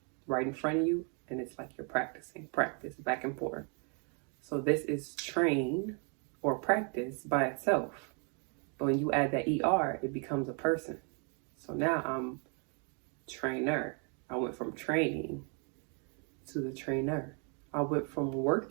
right in front of you, and it's like you're practicing, practice back and forth. So this is train or practice by itself. But when you add that ER, it becomes a person. So now I'm trainer. I went from training to the trainer. I went from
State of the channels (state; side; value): quieter; left; 38.1 dB